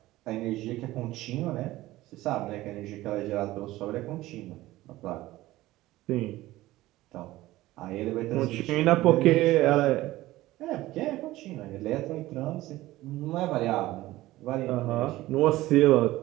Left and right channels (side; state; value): left; quieter; 17.0 dB